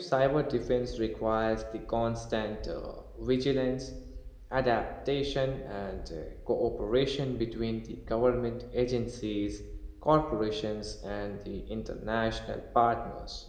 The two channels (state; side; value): identical; both; correlation 1.00